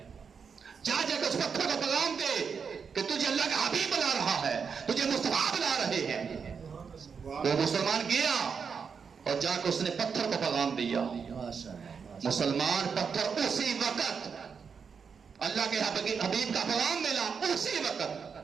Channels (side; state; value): left; quieter; 6.1 dB